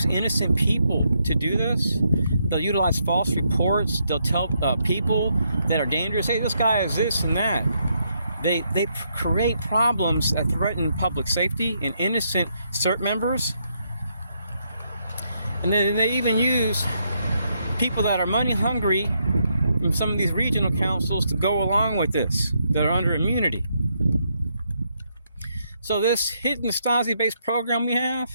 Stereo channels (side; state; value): both; inverted; correlation -0.77